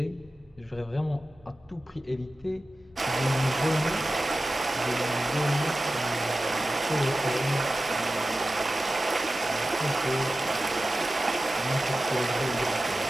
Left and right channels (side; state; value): both; normal; correlation 0.94